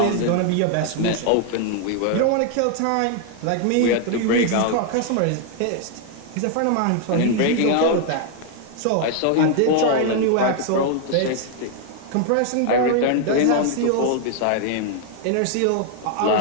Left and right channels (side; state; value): both; different; correlation 0.00